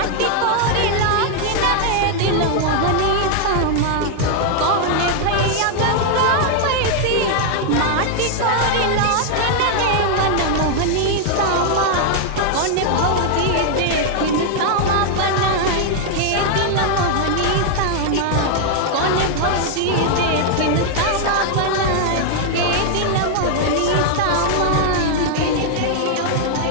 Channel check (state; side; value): different; both; correlation 0.00